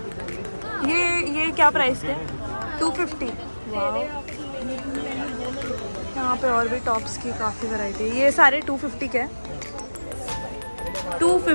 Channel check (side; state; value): both; inverted; correlation -1.00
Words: ये क्या प्राइस के? 250। यहाँ पे और भी टॉप्स की काफ़ी वैरायटी है। ये सारे 250 के हैं।